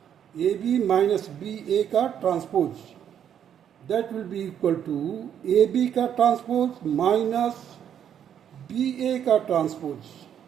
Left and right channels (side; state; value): left; quieter; 9.2 dB